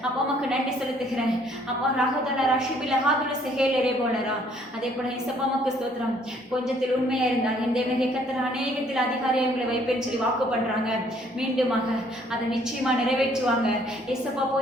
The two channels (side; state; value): both; normal; correlation 0.63